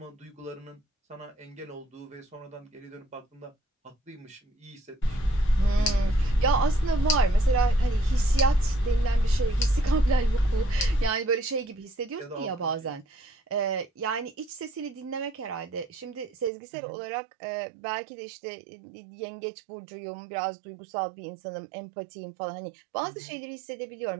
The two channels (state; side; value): drops out; left; at 16.5 s